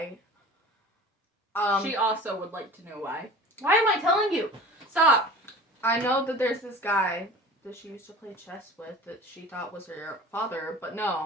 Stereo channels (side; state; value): both; normal; correlation 0.40